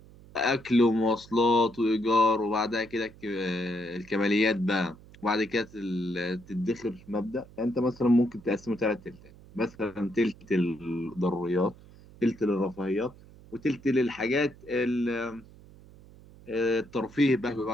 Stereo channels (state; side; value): noise; right; hum, 22 dB below the sound